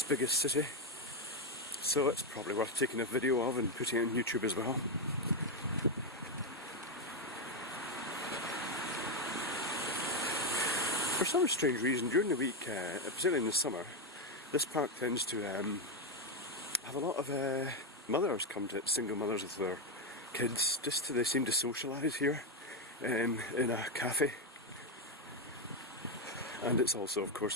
biggest city, so it's probably worth taking a video of and putting it on YouTube as well. For some strange reason, during the week, particularly in the summer, this park tends to have a lot of mothers come to it, single mothers with their kids. They seem to socialise here in a cafe. And it's also, of course,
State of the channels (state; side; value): normal; both; correlation 0.06